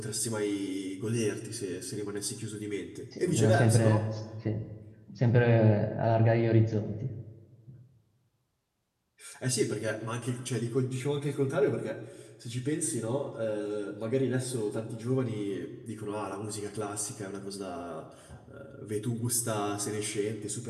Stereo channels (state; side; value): identical; both; correlation 1.00